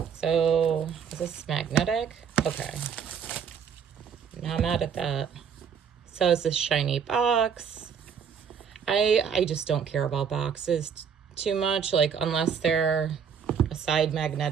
So is this magnetic? Okay. Not mad at that. So it's this shiny box. I just don't care about boxes too much, like unless they're a side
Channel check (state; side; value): quieter; left; 7.2 dB